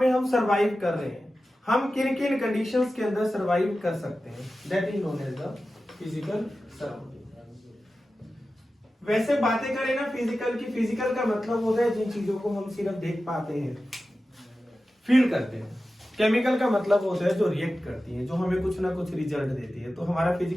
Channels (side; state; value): both; normal; correlation 0.94